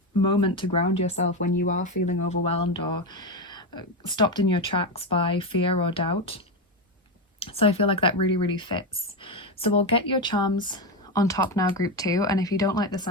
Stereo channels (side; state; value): both; normal; correlation 0.13